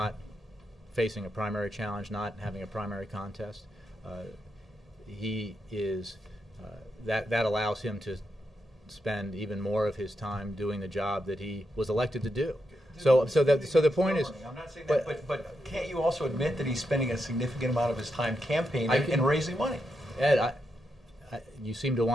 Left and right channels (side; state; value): both; normal; correlation 0.84